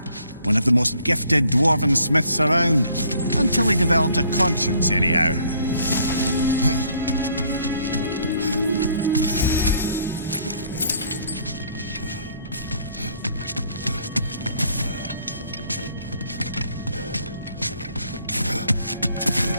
One of the most gifted dwarven smiths around. Until he developed a conscience, anyhow.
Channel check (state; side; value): inverted; both; correlation -0.63